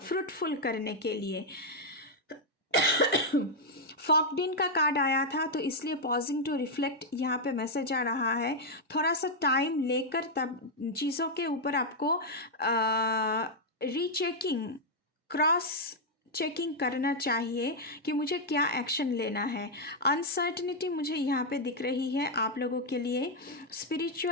करने के लिए। फॉकडिन का कार्ड आया था, तो इसलिए पॉजिंग टू रिफ्लेक्ट यहाँ पे मैसेज आ रहा है। थोड़ा सा टाइम लेकर तब चीज़ों के ऊपर आपको रीचेकिंग, क्रॉस चेकिंग करना चाहिए कि मुझे क्या एक्शन लेना है। अनसर्टनिटी मुझे यहाँ पे दिख रही है आप लोगों के लिए,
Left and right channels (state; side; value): normal; both; correlation -0.01